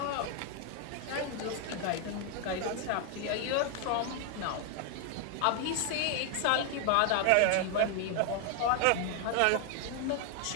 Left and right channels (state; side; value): different; both; correlation 0.00